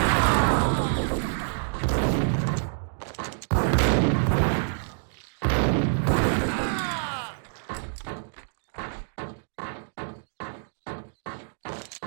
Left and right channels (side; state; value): left; silent; digital silence